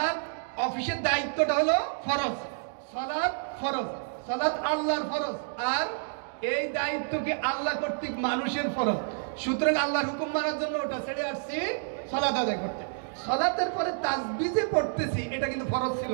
অফিসের দায়িত্বটা হলো ফরজ, সালাত ফরজ, সালাত আল্লাহর ফরজ, আর এই দায়িত্বকে আল্লাহ কর্তৃক মানুষের ফরজ। সুতরাং আল্লাহর হুকুম মানার জন্য ওটা ছেড়ে আসছি সালাত আদায় করতে। সালাতের পরে তাসবিহ যে পড়তেছি এটা কিন্তু ফরজ ছিল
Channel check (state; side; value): silent; left; digital silence